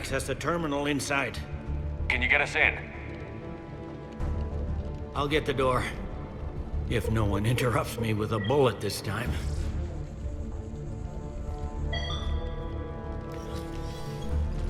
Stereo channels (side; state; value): both; identical; correlation 1.00